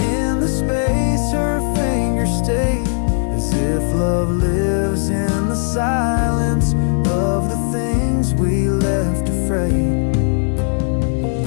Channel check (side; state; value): right; silent; digital silence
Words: the space her fingers stay, as if love lives in the silence of the things we left afraid.